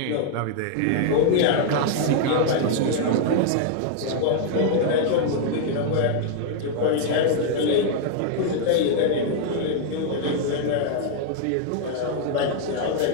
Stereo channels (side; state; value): both; different; correlation -0.01